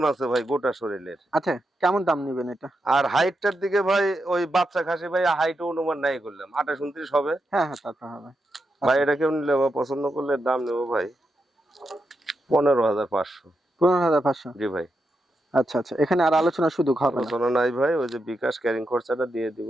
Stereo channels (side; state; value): both; normal; correlation 0.85